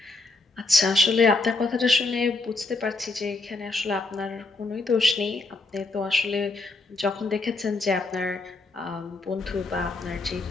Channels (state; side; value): quieter; right; 3.3 dB